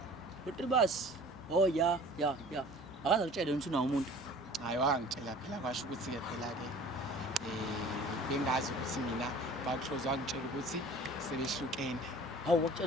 Utribas. Oh ya. Akaza kutshela ukuthi unawo umuntu. Hayi wangitshela phela kwasho ukuthi ke phela ke bengazi ukuthi mina bakuhloza wangitshela ukuthi sebehlukene. Hawu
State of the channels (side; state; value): both; normal; correlation 0.45